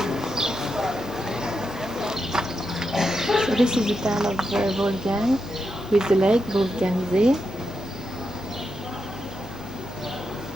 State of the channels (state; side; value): normal; both; correlation 0.86